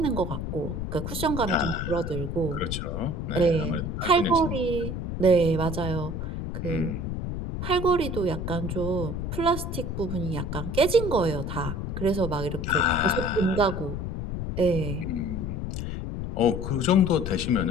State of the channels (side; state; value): left; noise; rumble, 4 dB below the sound